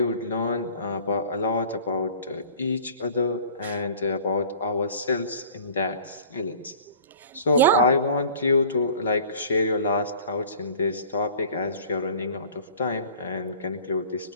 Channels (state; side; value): inverted; both; correlation -0.47